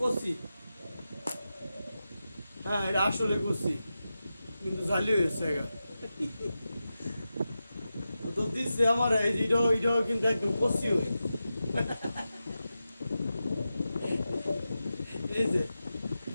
কষি। হ্যাঁ, এটা আসলে কষি, কিন্তু জালি হয়েছে গা। তো দিচ্ছে আমার এই যে এটাও কিন্তু একদম কষি হয়ে। এই যে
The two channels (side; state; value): both; inverted; correlation -0.92